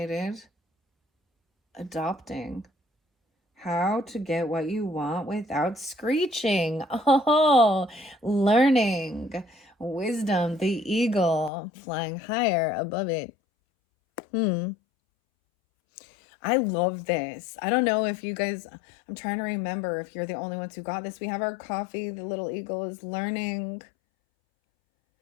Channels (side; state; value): right; drops out; at 11.5 s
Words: Adopting. How to get what you want without screeching. Oh, learning. Wisdom, the eagle flying higher above it. I love this. I don't know if you guys, I'm trying to remember if you're the only ones who got this. We have our coffee. The little eagle is learning.